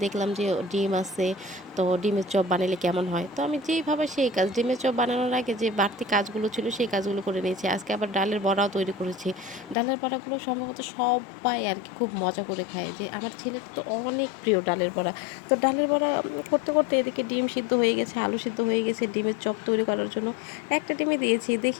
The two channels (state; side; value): drops out; right; at 9.8 s